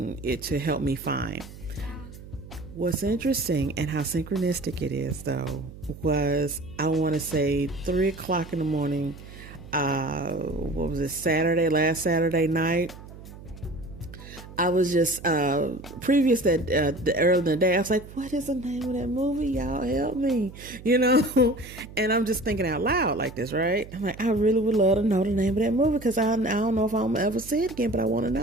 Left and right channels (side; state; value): right; noise; hum, 16 dB below the sound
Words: it to help me find. What's interesting and how synchronistic it is, though, was, I want to say 3 o'clock in the morning. What was it? Last Saturday night. I was just, previous that, early in the day, I was like, what is the name of that movie? Y'all help me, and I'm just thinking out loud like this, right? I'm like, I really would love to know the name of that movie, because I don't know if I'm ever see it again, but I want to